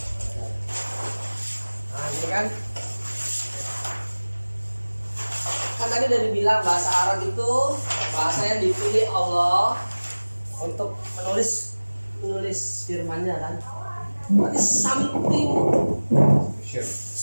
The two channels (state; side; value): inverted; both; correlation -1.00